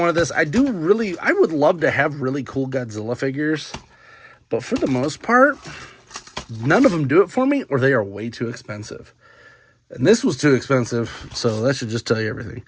this. I would love to have really cool Godzilla figures, but for the most part, none of them do it for me, or they are way too expensive. And this was too expensive, so that should just tell you everything.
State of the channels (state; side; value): identical; both; correlation 1.00